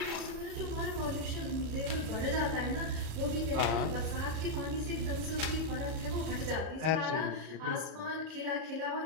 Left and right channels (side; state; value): left; late; 37 ms